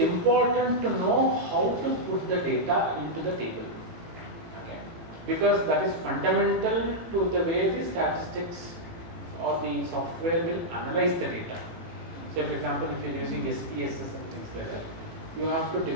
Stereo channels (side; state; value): left; late; 18 ms